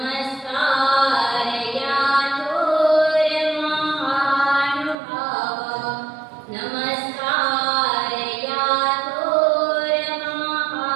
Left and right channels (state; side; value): drops out; left; at 5.0 s